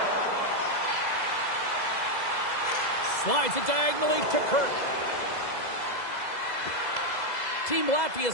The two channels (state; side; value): late; right; 2.0 ms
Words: Slides it diagonally to Kirk. Team